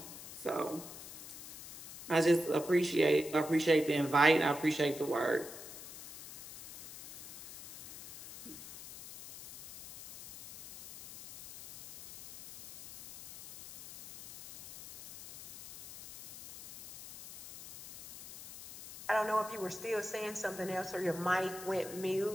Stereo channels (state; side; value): noise; left; hiss, 14 dB below the sound